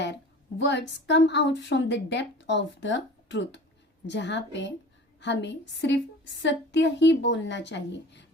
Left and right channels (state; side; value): normal; both; correlation 0.41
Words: words come out from the depth of the truth. जहाँ पे हमें सिर्फ सत्य ही बोलना चाहिए,